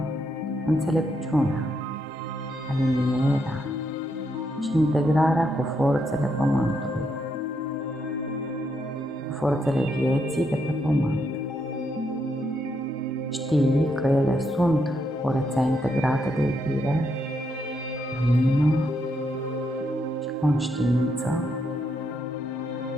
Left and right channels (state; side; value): normal; both; correlation 0.78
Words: înțelepciunea, alinierea și integrarea cu forțele Pământului, cu forțele vieții de pe Pământ. Știi că ele sunt o rețea integrată de iubire, lumină și conștiință.